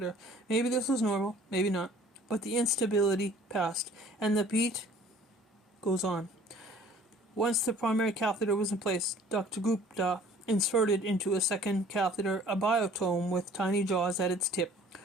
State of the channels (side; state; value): both; normal; correlation 0.52